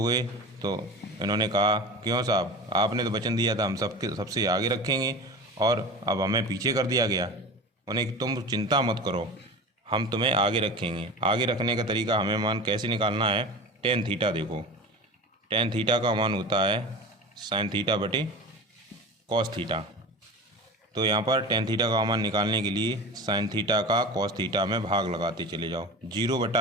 गए तो इन्होंने कहा, क्यों साहब, आपने तो वचन दिया था हम सबसे आगे रखेंगे और अब हमें पीछे कर दिया गया। उन्हें, तुम चिंता मत करो, हम तुम्हें आगे रखेंगे। आगे रखने का तरीका, हमें मान कैसे निकालना है, tan थीटा। देखो tan थीटा का मान होता है sin थीटा cos थीटा। तो यहाँ पर tan थीटा का मान निकालने के लिए sin थीटा का cos थीटा में भाग लगाते चले जाओ।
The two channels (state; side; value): normal; both; correlation 0.33